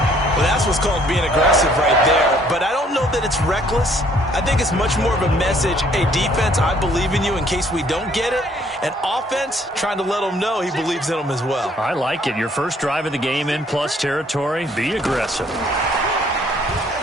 Well, that's what's called being aggressive right there. But I don't know that it's reckless. I think it's much more of a message. Hey, defense, I believe in you in case we don't get it. And offense, trying to let him know he believes in him as well. I like it. Your first drive of the game in plus territory. Be aggressive.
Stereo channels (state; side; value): normal; both; correlation 0.62